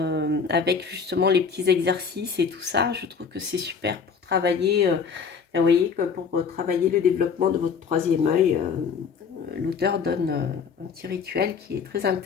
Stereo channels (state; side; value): quieter; right; 6.0 dB